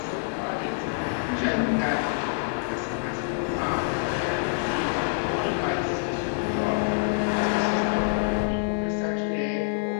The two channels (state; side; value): silent; right; digital silence